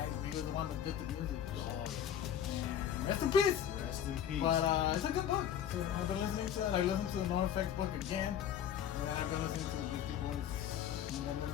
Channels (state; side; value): quieter; right; 9.5 dB